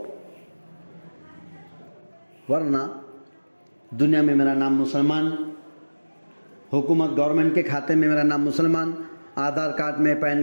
ورنہ دنیا میں میرا نام مسلمان، حکومت گورنمنٹ کے کھاتے میں میرا نام مسلمان، آدھار کارڈ میں،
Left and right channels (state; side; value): inverted; both; correlation -1.00